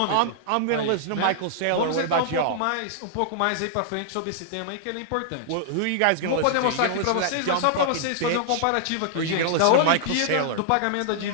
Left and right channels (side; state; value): both; different; correlation -0.01